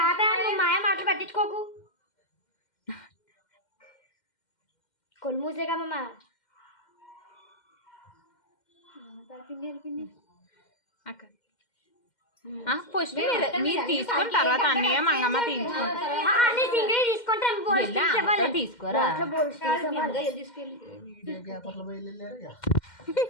మాయ మాటలు పట్టించుకోకు. కొలు మూసే కమ్మా ఫస్ట్ మీరు తీసుకున్న తర్వాత అన్నయ్య మంగమ్మ తీసుకుంటారు తీసుకోరా.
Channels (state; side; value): late; right; 2.1 ms